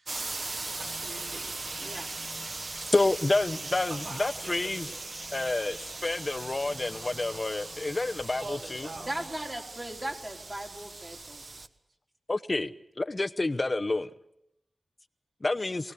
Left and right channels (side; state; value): both; normal; correlation 0.98